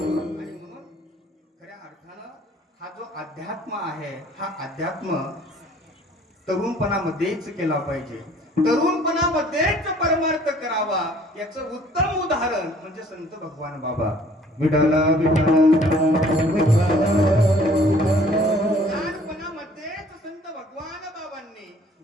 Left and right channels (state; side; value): normal; both; correlation 0.57